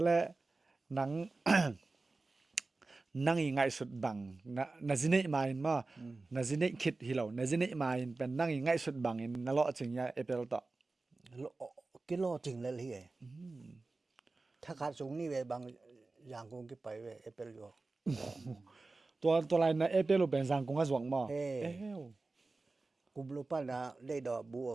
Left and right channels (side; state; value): left; quieter; 3.5 dB